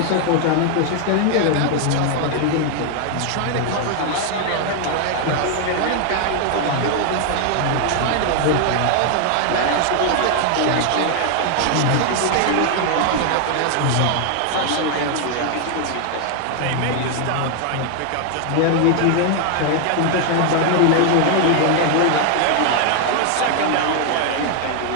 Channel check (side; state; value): both; different; correlation 0.00